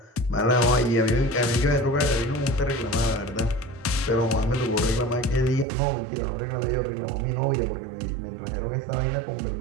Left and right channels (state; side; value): drops out; left; at 5.7 s